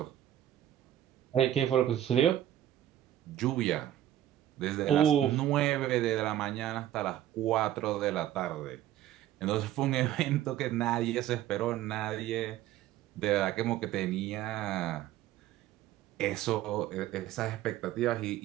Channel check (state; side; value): quieter; left; 12.4 dB